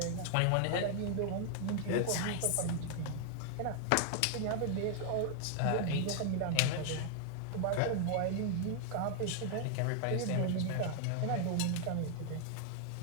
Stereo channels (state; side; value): different; both; correlation 0.00